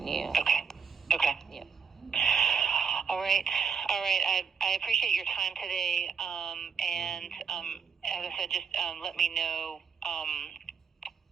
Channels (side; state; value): left; quieter; 6.0 dB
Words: Okay. Yeah. All right. I appreciate your time today. And as I said, just let me know